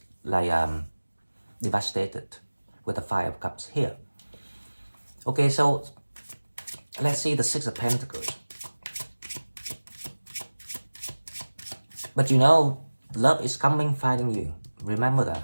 like devastated with the Five of Cups here. Okay, so let's see the Six of Pentacles. But you know, love is coming, finding you. Remember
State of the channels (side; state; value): both; inverted; correlation -1.00